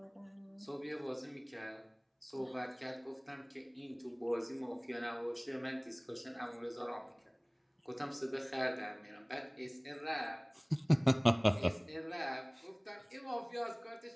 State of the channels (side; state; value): both; identical; correlation 1.00